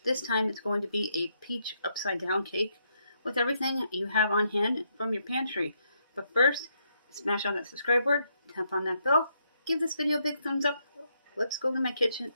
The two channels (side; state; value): both; inverted; correlation -0.76